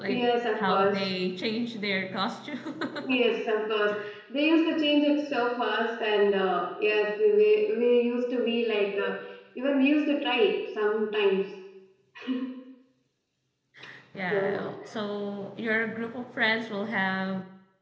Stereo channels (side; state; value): both; identical; correlation 1.00